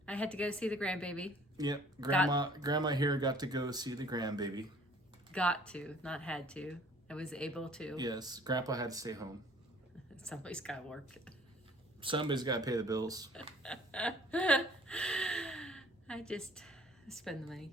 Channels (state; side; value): normal; both; correlation 0.54